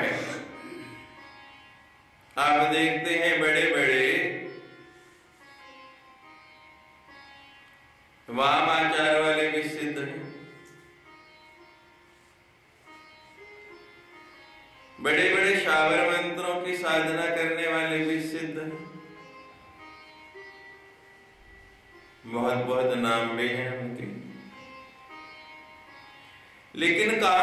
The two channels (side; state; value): both; identical; correlation 1.00